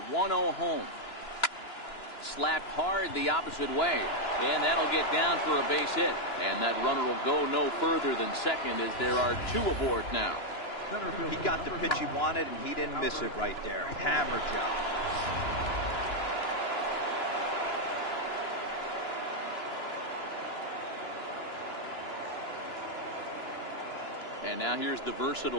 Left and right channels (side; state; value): right; late; 2.9 ms